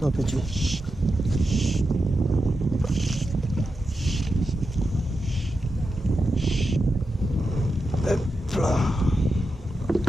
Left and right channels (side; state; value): both; normal; correlation 0.89